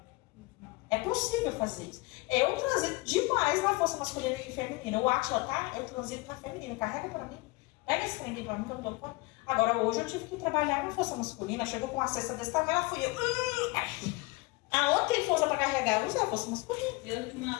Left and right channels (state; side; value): quieter; right; 24.2 dB